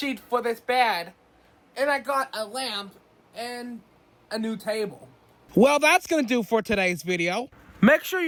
for this bed, and I got a lamp and a new table. Well, that's gonna do for today's video. Make sure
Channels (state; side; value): identical; both; correlation 1.00